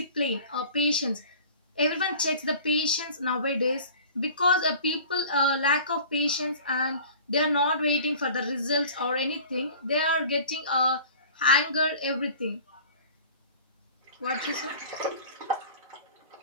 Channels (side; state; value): both; inverted; correlation -0.44